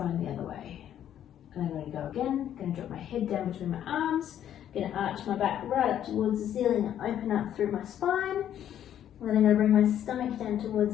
the other way. And I'm going to go again. I'm going to drop my head down between my arms. I'm going to arch my back right up towards the ceiling and open up through my spine. And then I'm going to bring my stomach down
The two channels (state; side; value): quieter; right; 10.5 dB